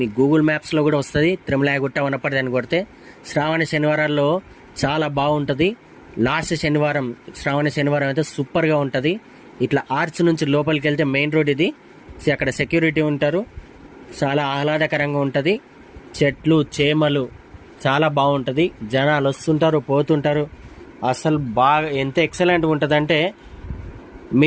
గూగుల్ మ్యాప్స్లో కూడా వస్తుంది తిరుమలగుట్ట వనపర్తి అని కొడితే. శ్రావణ శనివారాల్లో చాలా బాగుంటుంది. లాస్ట్ శనివారం శ్రావణ శనివారం అయితే సూపర్గా ఉంటుంది. ఇట్లా ఆర్చ్ నుంచి లోపలికి వెళ్తే మెయిన్ రోడ్ ఇది. అక్కడ సెక్యూరిటీ ఉంటారు. చాలా ఆహ్లాదకరంగా ఉంటుంది. చెట్లు చేమలు చాలా బాగుంటుంది. జనాలు వస్తుంటారు పోతుంటారు. అసలు బాగా ఎంత ఎక్సలెంట్గా ఉంటుందంటే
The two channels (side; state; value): both; identical; correlation 1.00